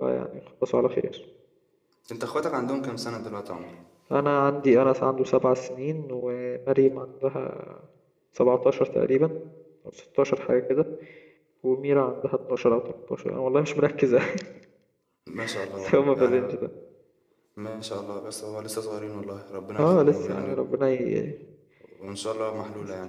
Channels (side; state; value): both; identical; correlation 1.00